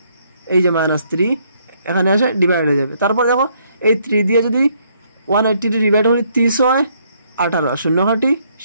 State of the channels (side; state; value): both; inverted; correlation -0.69